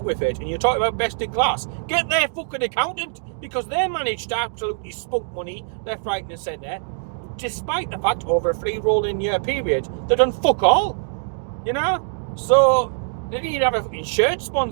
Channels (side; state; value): left; silent; digital silence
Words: with it and you're talking about best in class, get their fucking accountant, because they managed to absolutely spunk money left, right and centre, despite the fact over a 3 rolling year period they've done fuck all. So they need to have a fucking shirt